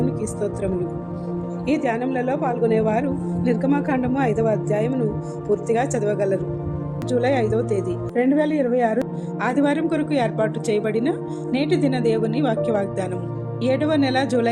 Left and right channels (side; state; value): both; identical; correlation 1.00